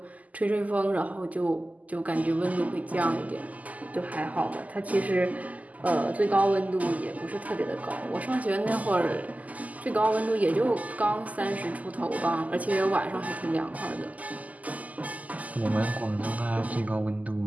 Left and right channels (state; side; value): late; left; 0.076 ms